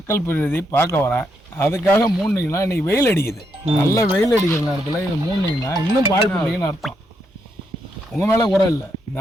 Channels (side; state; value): both; normal; correlation 0.79